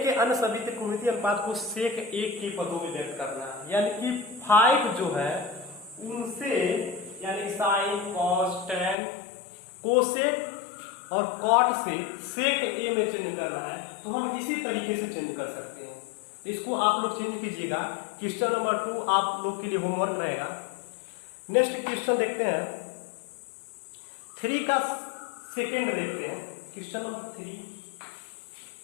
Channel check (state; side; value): drops out; right; at 9.0 s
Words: के अन्य सभी त्रिकोणमितीय अनुपात को सेक ए के पदों में व्यक्त करना है, यानी कि 5 जो है उनसे यानी साइन कॉस टैन कोसेक और कॉट से सेक ए में चेंज करना है, तो हम इसी तरीके से चेंज कर सकते हैं। इसको आप लोग चेंज कीजिएगा। क्वेश्चन नंबर 2 आप लोग के लिए होमवर्क रहेगा। नेक्स्ट क्वेश्चन देखते हैं, 3 का सेकेंड देखते हैं, क्वेश्चन नंबर 3।